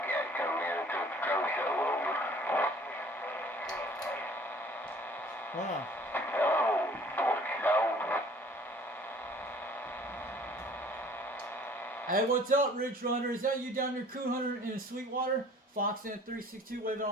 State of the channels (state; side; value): normal; both; correlation 0.52